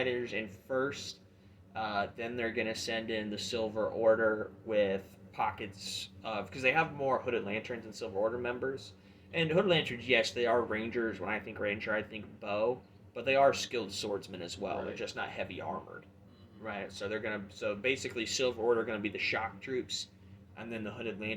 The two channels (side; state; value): both; identical; correlation 1.00